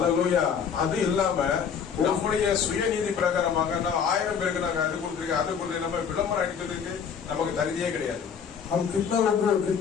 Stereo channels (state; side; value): quieter; right; 7.0 dB